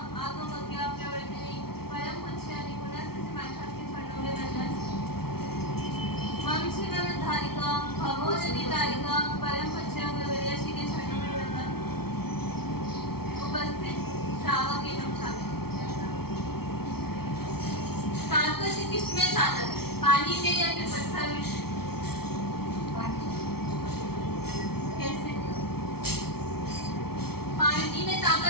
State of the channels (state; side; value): late; right; 0.95 ms